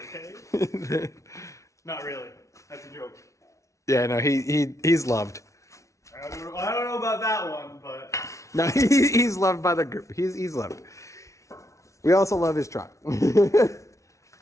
okay? Not really. That's a joke. Yeah, no, he's loved. I don't know about that one, but. No, he's loved by the group. He's loved. We also love his truck.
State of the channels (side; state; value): right; late; 0.14 ms